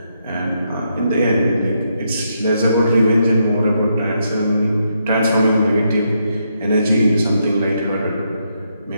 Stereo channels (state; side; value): inverted; both; correlation -0.79